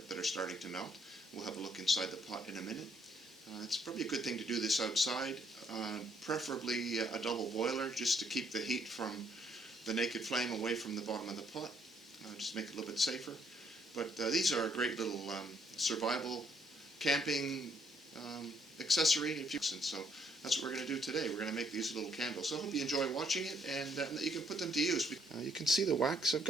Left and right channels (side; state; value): both; normal; correlation 0.69